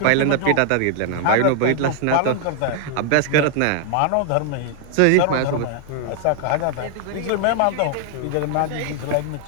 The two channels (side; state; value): both; different; correlation 0.00